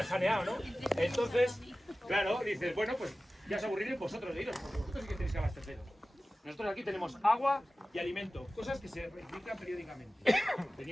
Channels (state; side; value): normal; both; correlation 0.96